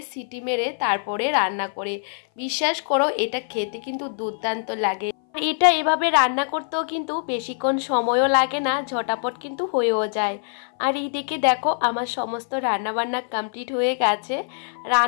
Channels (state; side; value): silent; right; 58 dB below the other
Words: সিটি মেরে তারপরে রান্না করে। বিশ্বাস করো এটা খেতে কিন্তু দুর্দান্ত লাগে। এটা এভাবে রান্না করতেও কিন্তু বেশিক্ষণ সময়ও লাগে না, ঝটাপট কিন্তু হয়েও যায়। আর এইদিকে দেখো আমার সমস্ত রান্নাবান্না কমপ্লিট হয়ে গেছে।